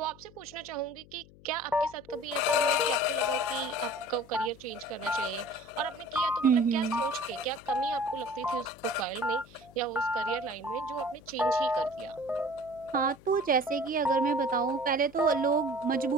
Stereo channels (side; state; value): left; noise; hum, 23 dB below the sound